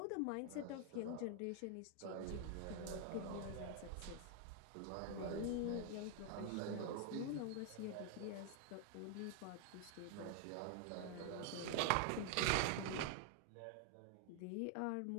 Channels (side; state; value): both; different; correlation 0.00